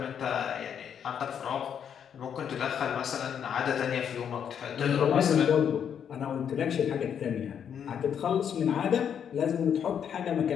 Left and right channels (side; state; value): right; quieter; 8.2 dB